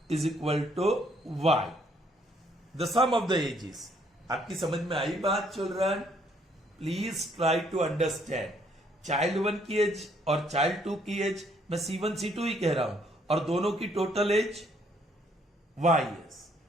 is equal to Y. The sum of the ages. आपकी समझ में आई बात, children? Please try to understand. Child 1 की as और child 2 की एज मैं C1 C2 ही कह रहा हूं और दोनों की total age Y is.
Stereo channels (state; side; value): normal; both; correlation 0.67